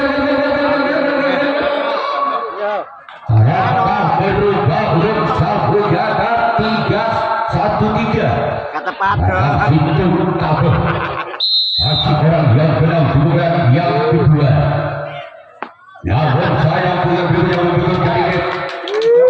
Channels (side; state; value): both; identical; correlation 1.00